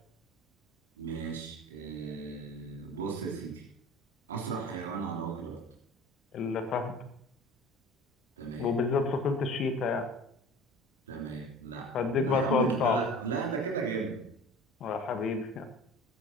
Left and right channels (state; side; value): normal; both; correlation 0.40